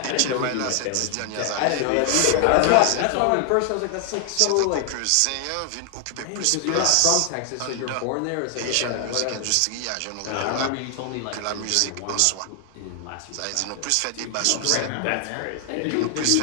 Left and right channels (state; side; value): different; both; correlation 0.00